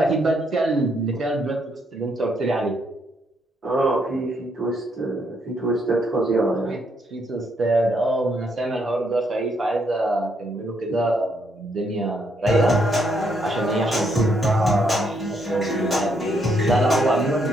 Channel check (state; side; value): normal; both; correlation 0.74